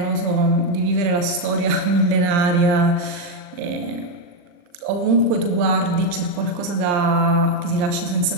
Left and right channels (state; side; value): late; left; 40 ms